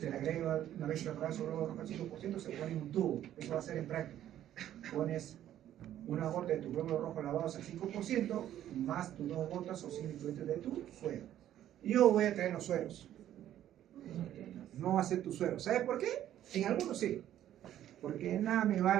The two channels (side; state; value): left; quieter; 11.8 dB